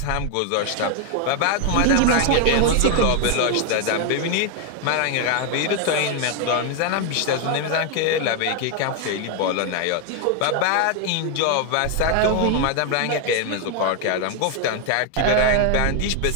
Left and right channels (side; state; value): both; different; correlation 0.01